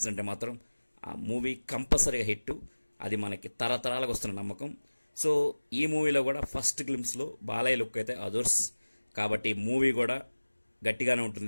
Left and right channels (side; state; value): both; inverted; correlation -1.00